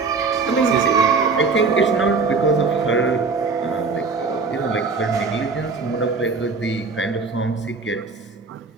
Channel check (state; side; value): quieter; left; 4.4 dB